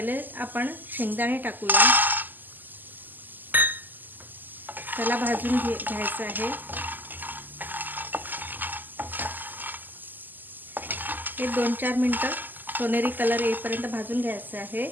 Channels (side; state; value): left; late; 0.087 ms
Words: आपण शेंगदाणे टाकूया, त्याला भाजून घ्यायचं आहे। हे 2-4 मिनिटं सोनेरी कलर येईपर्यंत भाजून घ्यायचं आहे।